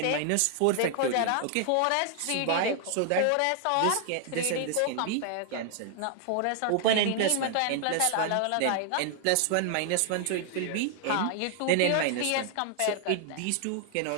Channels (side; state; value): both; different; correlation 0.00